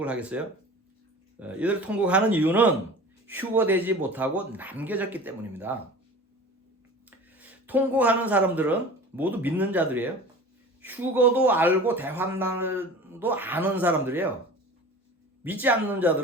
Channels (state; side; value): normal; both; correlation 0.39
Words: 하겠어요? 이들이 통곡하는 이유는 휴거되지 못하고 남겨졌기 때문입니다. 통곡하는 사람들은 모두 믿는 자들이에요. 휴거도 알고 대환란도 아는 사람들이에요. 믿지 않는